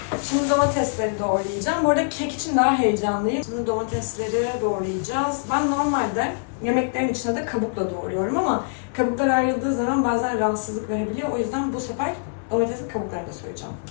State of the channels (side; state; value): right; silent; 63 dB below the other